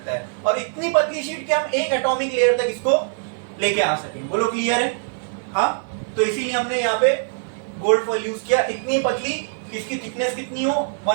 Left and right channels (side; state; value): left; silent; 55 dB below the other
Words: है, और इतनी पतली शीट कि हम एक एटॉमिक लेयर तक इसको लेके आ सकें। बोलो क्लियर है? हाँ, तो इसीलिए हमने यहाँ पे गोल्ड फॉइल यूज किया, इतनी पतली कि इसकी थिकनेस कितनी हो,